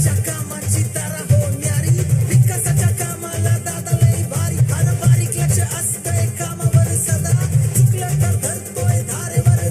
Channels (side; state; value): both; identical; correlation 1.00